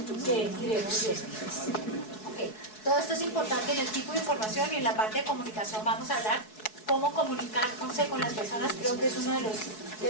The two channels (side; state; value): right; late; 4.7 ms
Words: que iremos viendo. Okay. Todo esto es importante en el tipo de información, y en la parte de comunicación vamos a hablar cómo comunicarse con las personas. Creo que es uno